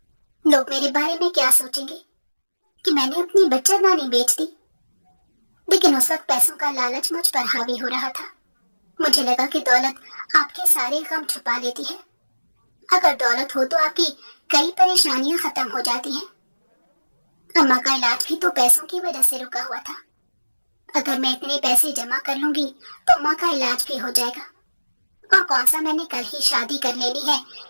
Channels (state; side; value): inverted; both; correlation -1.00